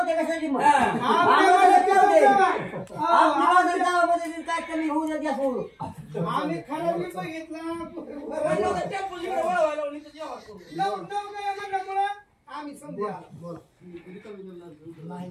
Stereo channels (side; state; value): both; identical; correlation 1.00